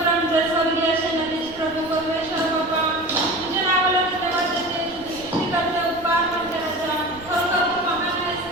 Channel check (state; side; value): noise; right; rumble, 22 dB below the sound